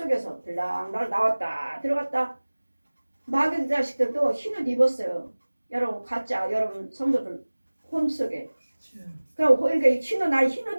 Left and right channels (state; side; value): inverted; both; correlation -1.00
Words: 들랑달랑 나왔다 들어갔다. 마귀 자식들도 흰 옷 입었어요. 여러분 가짜 여러분 성도들 혼 속에. 그럼 그러니까 흰 옷 날 흰